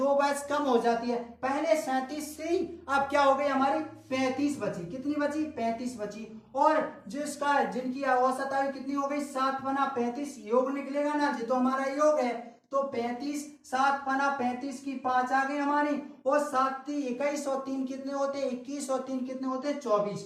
वर्ष कम हो जाती है, पहले 37 थी, अब क्या हो गई हमारी 35 बची, कितनी बची 35 बची। और जिनकी औसत आयु कितनी हो गई 7 बना 35, योग निकलेगा ना जी, तो हमारा योग है तो 35, 7 बना 35 की 5 आ गई हमारी, और 7 3 21 और 3 कितने होते 21 और 3 कितने होते 24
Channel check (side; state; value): both; identical; correlation 1.00